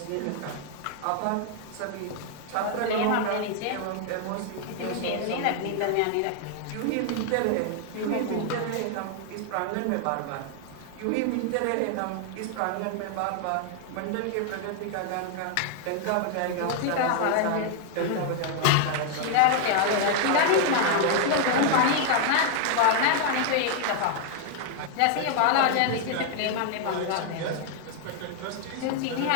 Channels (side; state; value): both; different; correlation 0.00